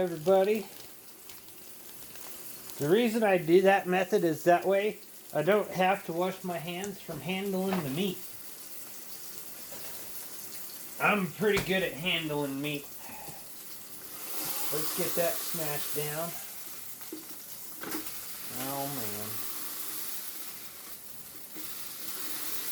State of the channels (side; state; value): both; identical; correlation 1.00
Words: The reason I do that method is that way I don't have to wash my hands from handling the meat. I'm pretty good at handling meat. Let's get that smashed down. Oh man.